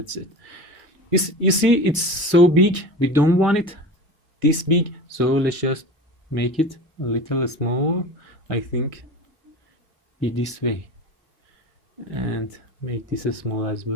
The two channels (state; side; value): normal; both; correlation 0.33